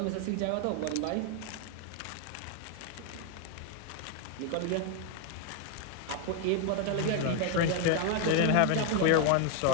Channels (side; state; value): both; different; correlation 0.01